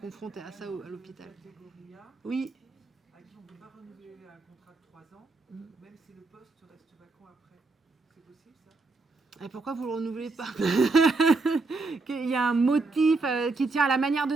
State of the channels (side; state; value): left; quieter; 3.6 dB